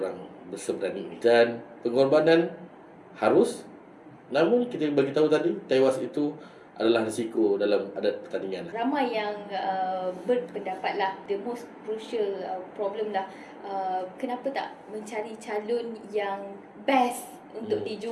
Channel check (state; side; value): identical; both; correlation 1.00